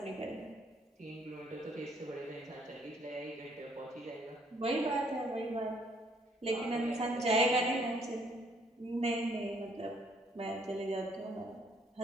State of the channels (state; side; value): normal; both; correlation 0.66